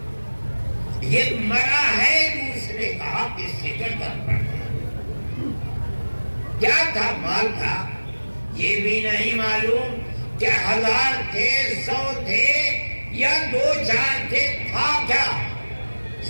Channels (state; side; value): inverted; both; correlation -1.00